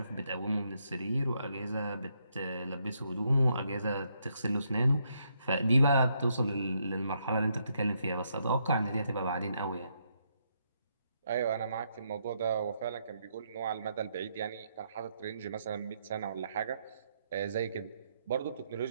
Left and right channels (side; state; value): both; inverted; correlation -0.76